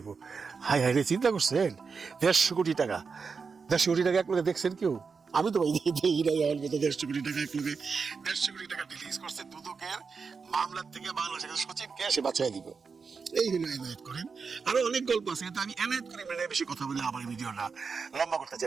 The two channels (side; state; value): left; quieter; 5.2 dB